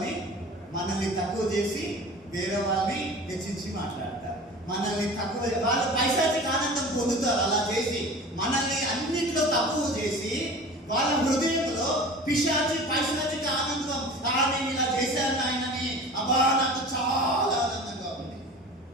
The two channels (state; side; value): normal; both; correlation 0.38